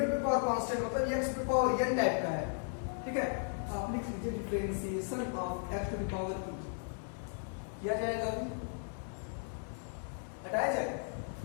पे पावर कांस्टेंट, मतलब x पे पावर n टाइप का है, ठीक है। तो आप लिख लीजिए differentiation of x to the power e किया जाएगा, अभी हटाया जाएगा,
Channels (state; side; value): silent; right; digital silence